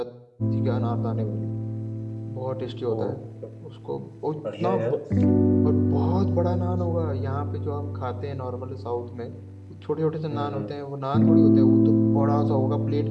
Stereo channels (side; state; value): both; identical; correlation 1.00